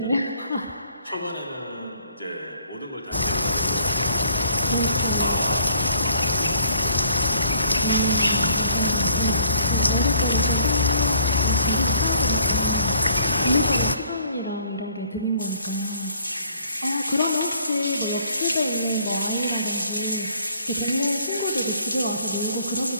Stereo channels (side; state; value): both; inverted; correlation -0.61